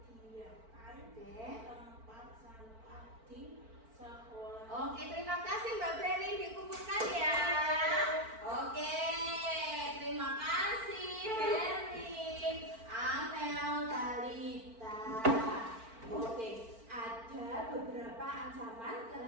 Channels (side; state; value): left; late; 4.5 ms